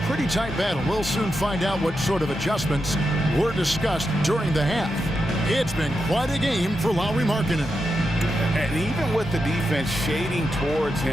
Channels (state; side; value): normal; both; correlation 0.87